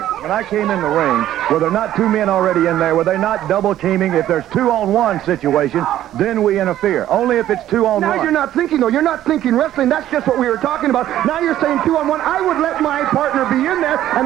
When I came in the ring, were there not two men already in there? Were they not double teaming? If there's 2-on-1 situation, then we interfere. Only if it's 2-on-1. Now, you're not thinking, though. You're not thinking wrestling. That's just what we were talking about. Now you're saying 2-on-1. I would let my partner be in there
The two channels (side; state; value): left; quieter; 12.7 dB